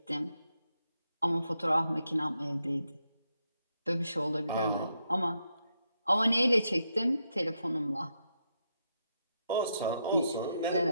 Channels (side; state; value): both; inverted; correlation -0.81